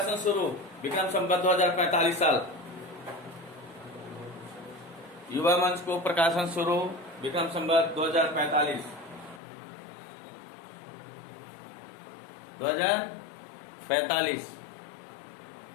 सुरु विक्रम संवत 2045 साल। युवा मंचको प्रकाशन सुरु विक्रम संवत 2045।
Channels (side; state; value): right; drops out; at 9.4 s